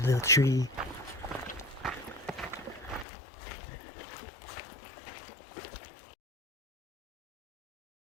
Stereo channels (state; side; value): drops out; right; at 3.1 s